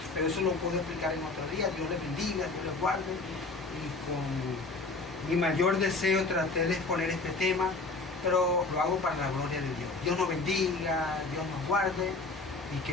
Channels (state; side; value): quieter; right; 3.5 dB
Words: Pero eso lo puedo explicar en otro día. Dios les bendiga, Dios les guarde. Y con mi mayor deseo traté de exponer este tema, pero lo hago para la gloria de Dios. Dios nos bendiga, Dios nos guarde y